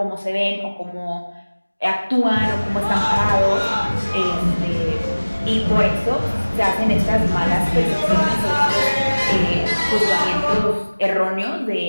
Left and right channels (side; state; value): both; inverted; correlation -1.00